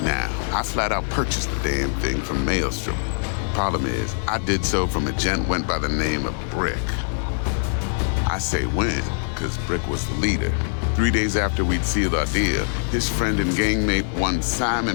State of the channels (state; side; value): silent; right; 63 dB below the other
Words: Now, I flat out purchased the damn thing from Maelstrom. Problem is, I did so from a gent went by the name of Brick. I say when, because Brick was the leader. 3 days after we'd sealed our deal, his friend and gangmate, one